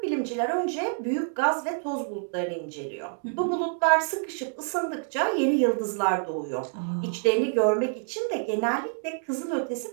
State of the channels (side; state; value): left; silent; digital silence